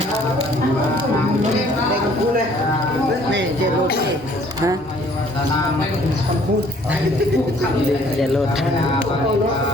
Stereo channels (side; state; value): both; normal; correlation 0.58